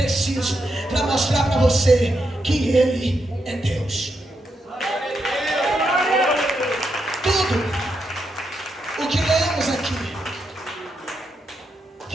para mostrar para você que Ele é Deus. Tudo o que lemos aqui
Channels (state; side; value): normal; both; correlation 0.83